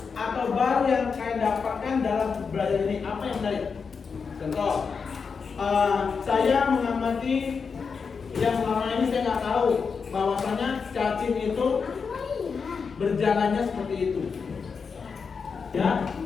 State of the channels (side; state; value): right; quieter; 5.5 dB